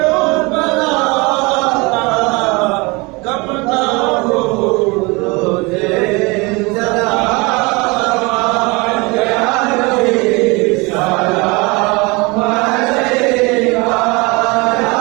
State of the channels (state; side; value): quieter; left; 26.3 dB